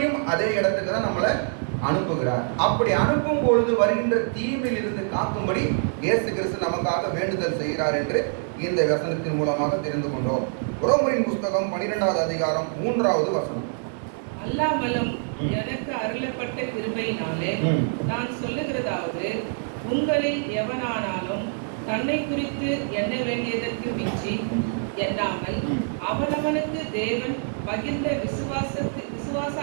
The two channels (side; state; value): left; silent; 61 dB below the other